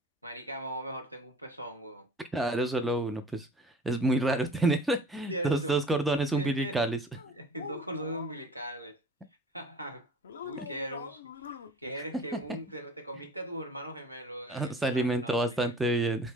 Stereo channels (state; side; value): normal; both; correlation 0.46